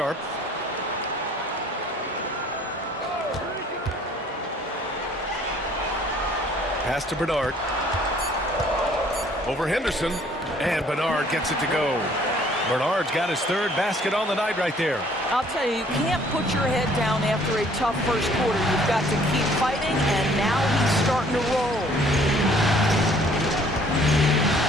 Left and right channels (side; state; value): both; normal; correlation 0.58